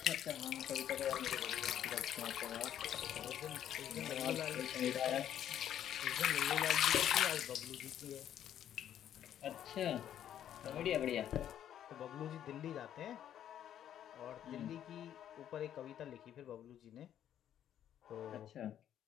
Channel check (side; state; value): right; quieter; 10.5 dB